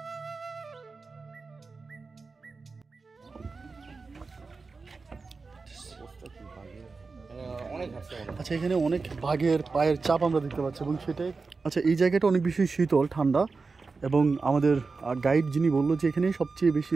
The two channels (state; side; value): quieter; left; 4.3 dB